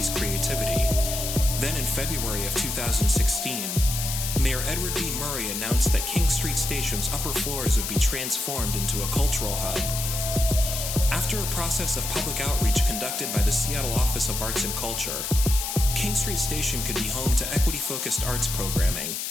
creativity. Then in February of 2016, Mayor Edward B. Murray announced that King Street Station's upper floors would be transformed into a cultural hub. After a process of public outreach conducted by the Seattle Office of Arts and Culture, King Street Station could be home to equity-focused arts programming,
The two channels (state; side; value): noise; left; hiss, 3 dB below the sound